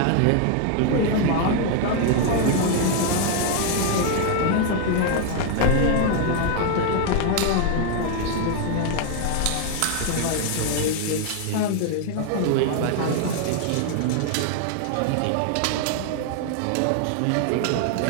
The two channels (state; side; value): different; both; correlation 0.00